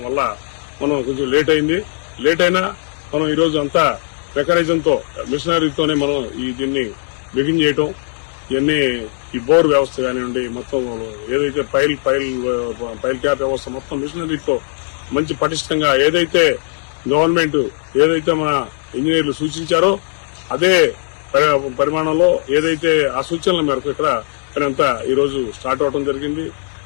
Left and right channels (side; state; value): right; silent; digital silence